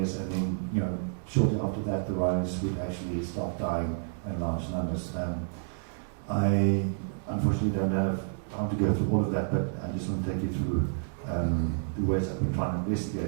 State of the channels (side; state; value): left; silent; 58 dB below the other